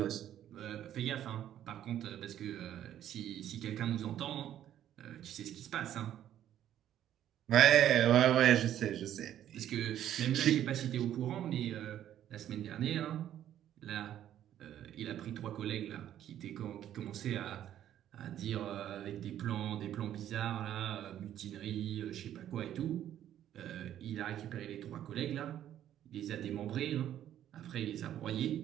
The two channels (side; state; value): left; quieter; 11.3 dB